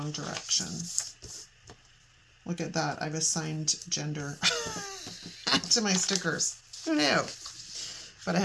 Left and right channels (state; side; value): identical; both; correlation 1.00